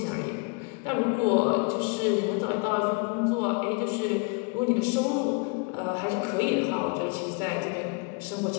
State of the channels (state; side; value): quieter; right; 32.3 dB